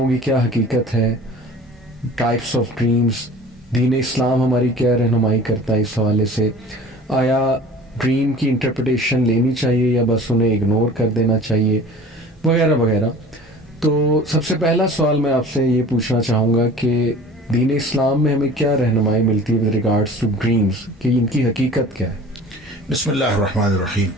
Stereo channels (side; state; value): both; normal; correlation 0.44